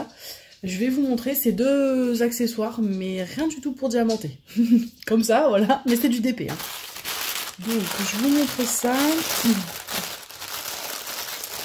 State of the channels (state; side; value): identical; both; correlation 1.00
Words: Je vais vous montrer ces 2 accessoires, mais rien du tout pour diamanter. Comme ça, voilà, mais c'est du DP. Hein. Donc je vous montre ça.